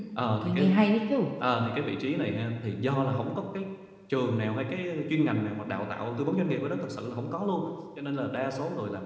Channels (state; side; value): identical; both; correlation 1.00